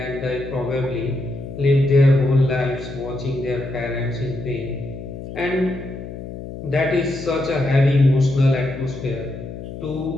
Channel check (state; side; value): noise; left; hum, 10 dB below the sound